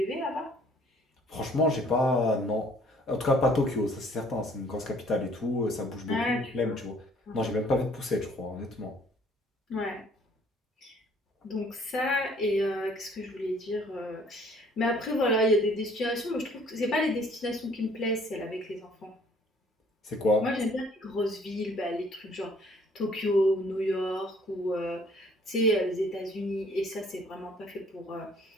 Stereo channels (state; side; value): normal; both; correlation 0.59